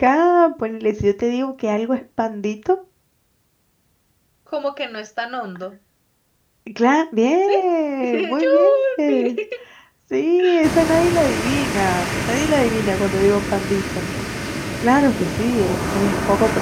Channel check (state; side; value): identical; both; correlation 1.00